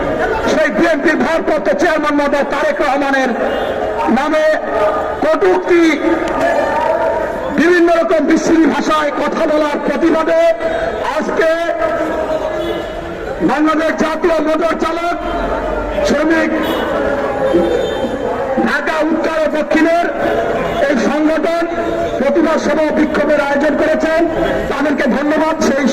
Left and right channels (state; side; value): identical; both; correlation 1.00